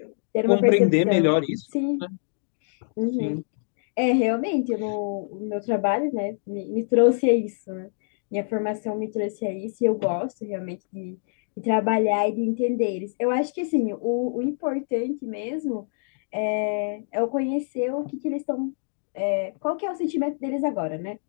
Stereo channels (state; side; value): silent; right; digital silence